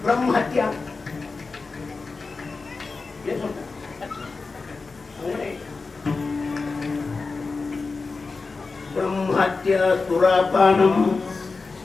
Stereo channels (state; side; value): quieter; right; 4.1 dB